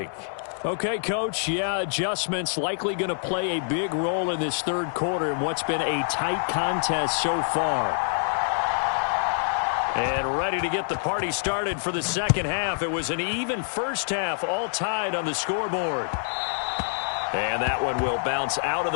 Okay, Coach, yeah, adjustments likely going to play a big role in this third quarter in what's been a tight contest so far. And ready to get the party started for the second half. It was an even first half, all tied on the scoreboard. And that one will bounce out of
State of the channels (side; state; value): right; silent; digital silence